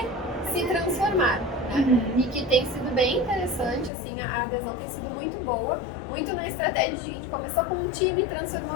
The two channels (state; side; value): drops out; right; at 3.9 s